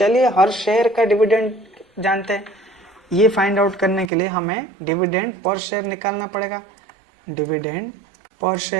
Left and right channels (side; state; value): left; drops out; at 4.1 s